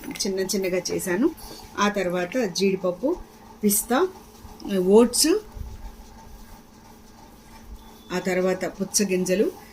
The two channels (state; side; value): identical; both; correlation 1.00